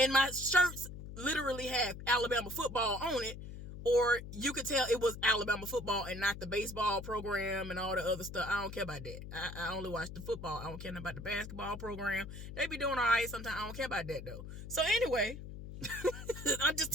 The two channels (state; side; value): noise; left; hum, 11 dB below the sound